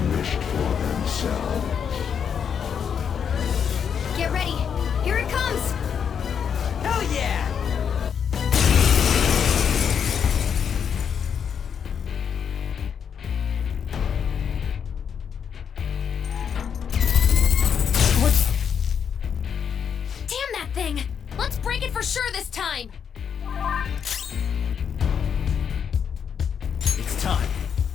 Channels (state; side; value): quieter; right; 7.5 dB